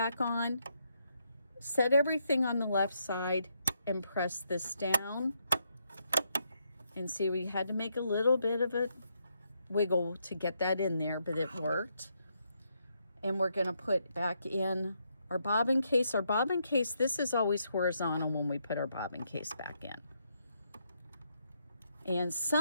on, set everything on the left side and press this down. And see, we had to make a little bit of a wiggle to get that in there, but it worked. And we're going to put back in our bobbin case. Our bobbin case, this is always horizontal when we put our bobbin case back in. And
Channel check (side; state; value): both; inverted; correlation -0.78